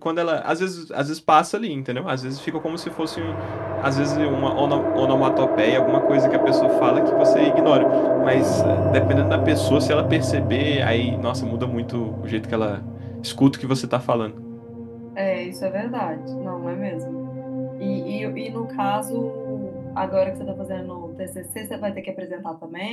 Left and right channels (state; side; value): identical; both; correlation 1.00